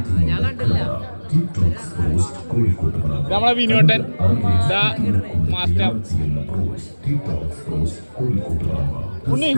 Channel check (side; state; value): both; inverted; correlation -1.00